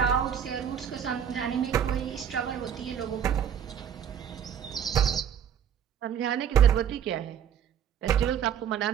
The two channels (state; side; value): quieter; left; 8.7 dB